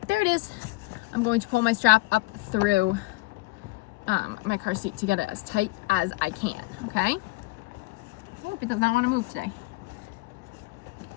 there it is. I'm going to pull my strap up through my car seat to get it as tight as I can, okay? Oh, it does not want to move today.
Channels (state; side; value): quieter; right; 21.7 dB